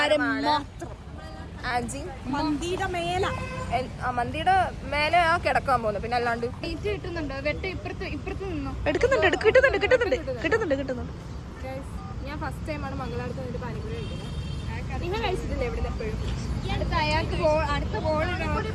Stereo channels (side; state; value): both; identical; correlation 1.00